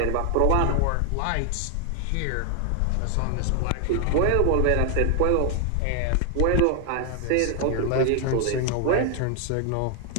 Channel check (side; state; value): both; different; correlation 0.00